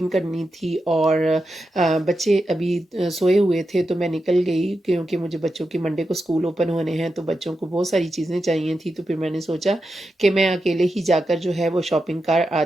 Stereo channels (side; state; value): both; normal; correlation 0.89